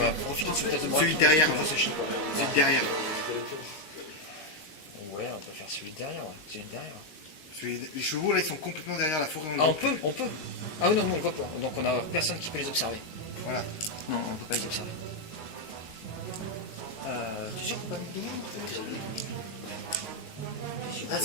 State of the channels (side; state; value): right; late; 19 ms